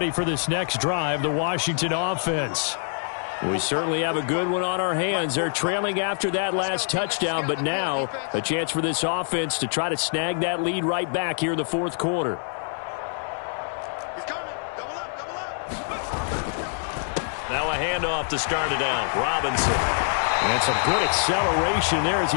for this next drive, the Washington offense. We certainly have a good one on our hands. They're trailing after that last touchdown, but now a chance for this offense to try to snag that lead right back here in the fourth quarter. Now a handoff to start it out. Robinson. And some good acceleration there as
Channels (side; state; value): right; silent; digital silence